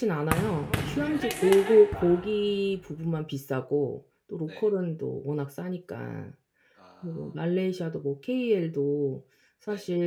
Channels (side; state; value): both; identical; correlation 1.00